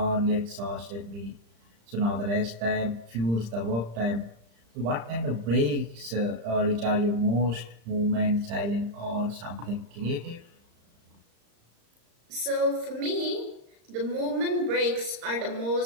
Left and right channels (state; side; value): late; left; 35 ms